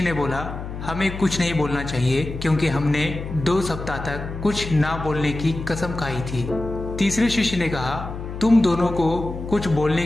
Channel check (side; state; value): left; noise; hum, 8 dB below the sound